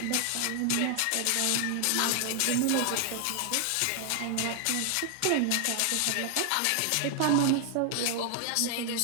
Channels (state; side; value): different; both; correlation 0.00